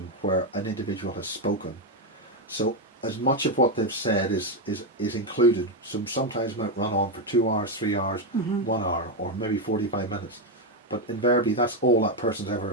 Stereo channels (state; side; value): normal; both; correlation 0.06